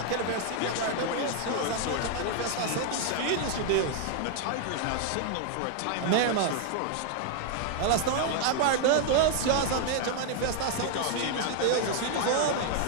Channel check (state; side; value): different; both; correlation 0.00